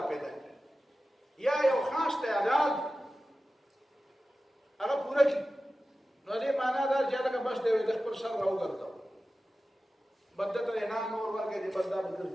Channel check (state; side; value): normal; both; correlation 0.94